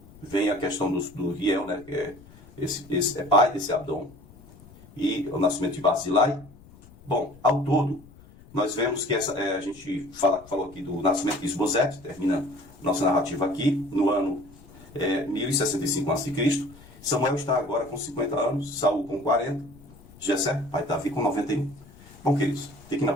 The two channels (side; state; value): left; noise; rumble, 22 dB below the sound